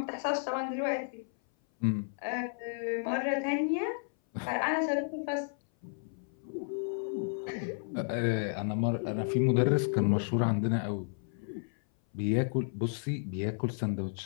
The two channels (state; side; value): silent; right; 56 dB below the other